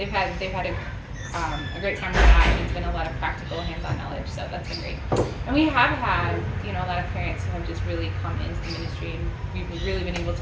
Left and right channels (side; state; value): both; identical; correlation 1.00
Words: had a great time with that, and it's been a lot of practical hands-on knowledge, so that's been great. And we have had, a lot of parents who have just really come into the ministry, and we've really been able